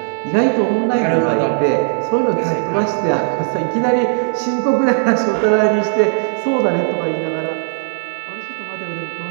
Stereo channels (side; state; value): left; silent; digital silence